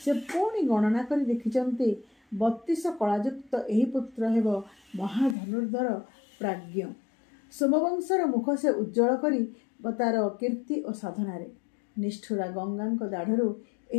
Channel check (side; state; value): right; drops out; at 5.4 s